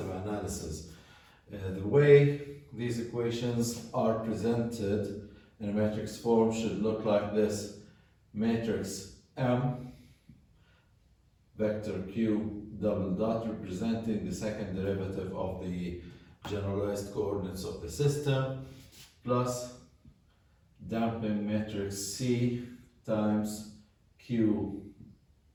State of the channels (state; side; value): identical; both; correlation 1.00